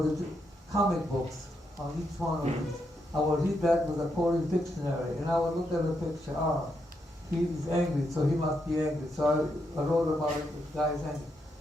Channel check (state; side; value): normal; both; correlation 0.81